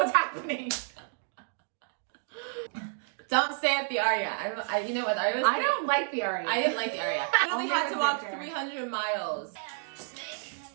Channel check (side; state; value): left; silent; digital silence